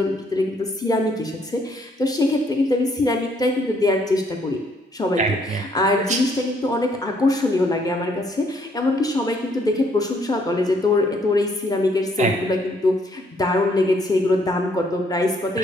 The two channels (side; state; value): both; normal; correlation 0.68